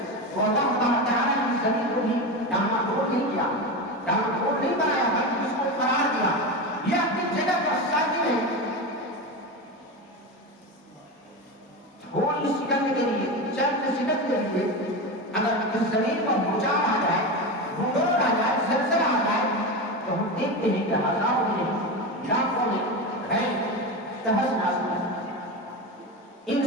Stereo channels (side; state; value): both; normal; correlation 0.20